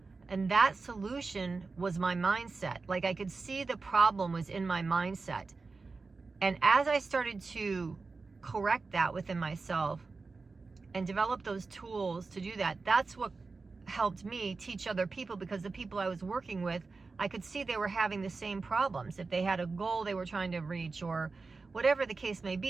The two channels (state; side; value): quieter; left; 4.1 dB